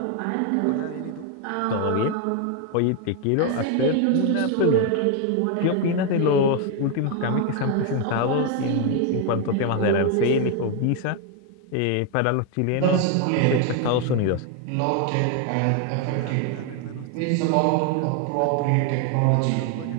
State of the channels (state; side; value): different; both; correlation 0.01